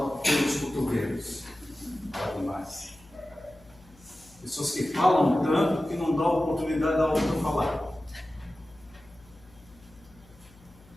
pelos cotovelos. Fala demais. Pessoas que falam tanto que não dão oportunidade da outra falar.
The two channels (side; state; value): left; noise; hum, 25 dB below the sound